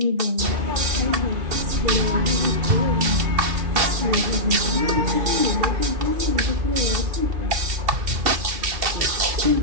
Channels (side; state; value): left; late; 2.7 ms